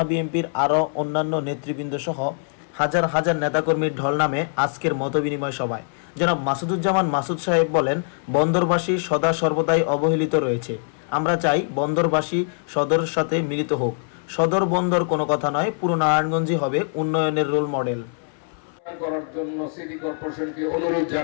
বিএনপির আরও অন্যান্য নেতৃবৃন্দ সহ হাজার হাজার নেতাকর্মীর ঢল নামে আজকের মতবিনিময় সভায়। জনাব মাসুদুজ্জামান মাসুদ সাহেব বলেন, বন্দরবাসী সদা সর্বদাই অবহেলিত রয়েছে। আমরা চাই বন্দরবাসী সদরের সাথে মিলিত হোক। সদর বন্দর কোনো কথা নয়, পুরো নারায়ণগঞ্জই হবে উন্নয়নের রোল মডেল করার জন্য সিটি কর্পোরেশনকে অনুরোধ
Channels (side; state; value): right; silent; 63 dB below the other